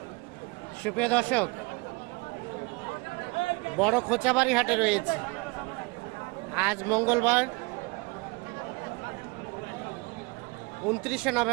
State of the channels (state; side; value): quieter; left; 27.2 dB